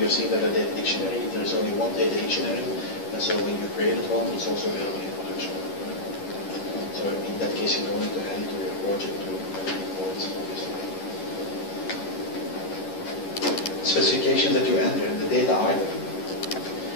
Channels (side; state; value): right; late; 11 ms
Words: have seen that a data dictionary, there is only one data dictionary, and so when you created one, it's also available in production. So in that case, you don't need to add it to your project to import it, obviously. Specifications that you enter in the data item.